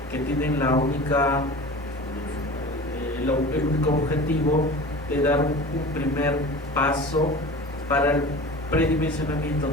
que tienen el único objetivo de dar un primer paso para el predimensionamiento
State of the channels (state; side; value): normal; both; correlation 0.37